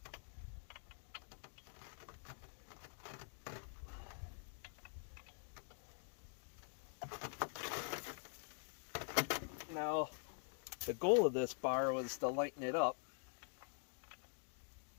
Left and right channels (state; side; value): silent; right; digital silence